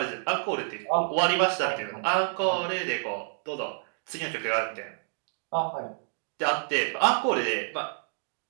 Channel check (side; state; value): left; silent; digital silence